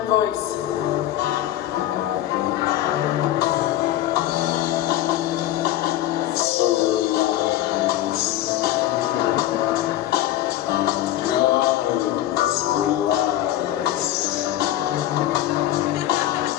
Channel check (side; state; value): right; quieter; 13.5 dB